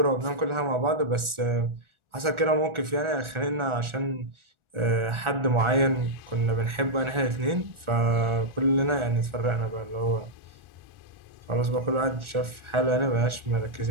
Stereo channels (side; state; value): left; late; 1.4 ms